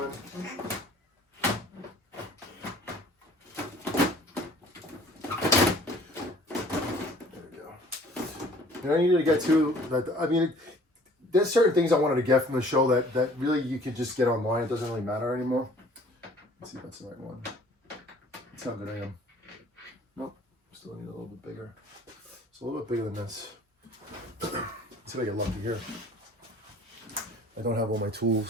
in. And I needed to get to that. I mean, there's certain things I wanted to get from the show that really you can just get online. It doesn't really matter anymore. Let's see if that's the right one. That's how good I am. Nope, still need a little bit bigger. It's a little bit bigger than this. Let's see if I get lucky here. I don't have all my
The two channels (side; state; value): both; normal; correlation 0.53